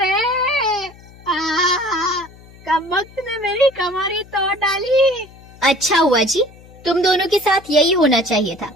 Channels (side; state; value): left; noise; hum, 22 dB below the sound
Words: कम वक्त ने मेरी कमरी तोड़ डाली। अच्छा हुआ जी, तुम दोनों के साथ यही होना चाहिए था।